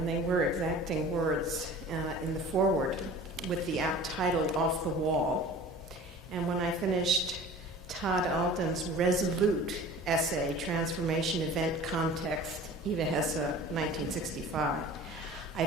they were exacting words in the foreword, with the apt title, Off the Wall, and when I finished Todd Alton's resolute essay, Transformation Event Context, Eva Hesse, 1965, I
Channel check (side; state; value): both; normal; correlation 0.42